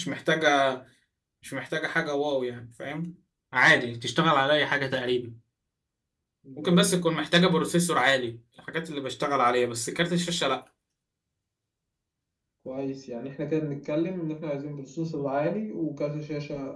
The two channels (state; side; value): identical; both; correlation 1.00